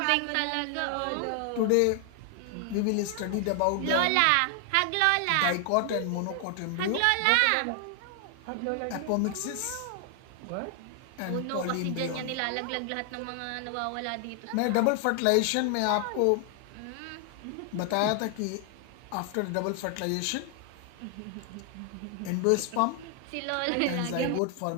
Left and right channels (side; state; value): both; different; correlation 0.00